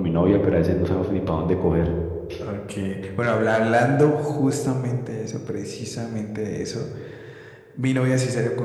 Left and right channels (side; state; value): both; identical; correlation 1.00